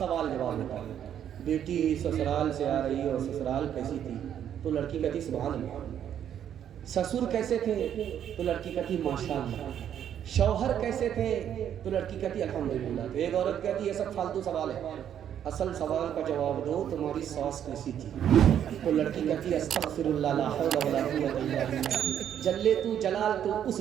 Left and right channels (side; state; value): left; quieter; 9.7 dB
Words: جواب ہوتا ہے، بیٹی سسرال سے آ رہی ہے اور سسرال کیسی تھی؟ تو لڑکی کہتی سبحان اللہ۔ سسر کیسے تھے؟ تو لڑکی کہتی ماشاء اللہ۔ شوہر کیسے تھے؟ تو لڑکی کہتی الحمدللہ۔ تو ایک عورت کہتی یہ سب فالتو سوال ہے، اصل سوال کا جواب دو، تمہاری ساس کیسی تھی؟ تو لڑکی کہتی استغفر اللہ لا حول ولا قوت الا باللہ، جلے تو جلال تو اس